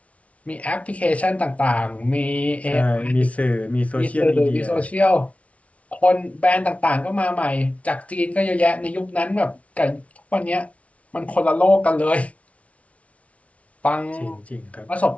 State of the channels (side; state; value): right; late; 0.065 ms